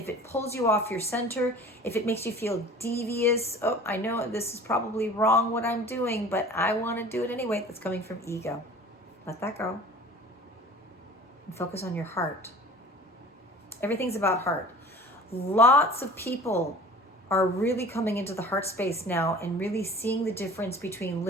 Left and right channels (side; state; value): both; normal; correlation 0.43